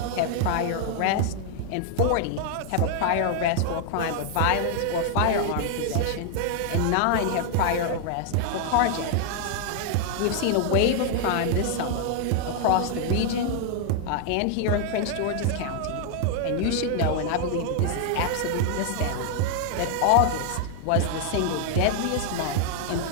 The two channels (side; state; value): both; different; correlation 0.00